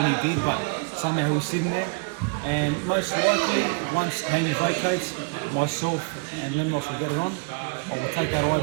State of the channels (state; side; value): quieter; left; 34.0 dB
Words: he did, but somehow he's sitting there. And most likely, once Haney vacates, myself and Lemnos will get it on. I will take that